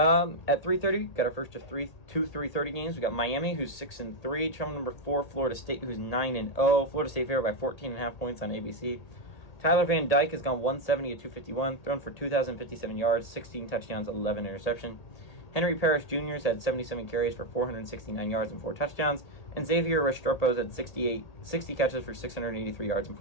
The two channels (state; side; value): late; right; 1.8 ms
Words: 3:30, got our first of two 3:30 games. We got Miami, who's 6-3, traveling number 4, Florida State, who's 9-0. Florida State favored by 14.5 points on ABC. Tyler Van Dyke has gone 170 at 251, thrown for 2,057 yards, 16 touchdowns, 11 interception. Henry Parrish Jr. has had 77 carries for 469 yards and 4 touchdowns, and Xavier Restrepo has had 60 catches for 683 yards and